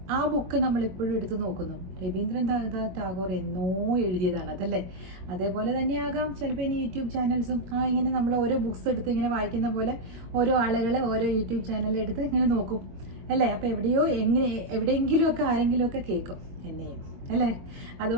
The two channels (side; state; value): left; late; 22 ms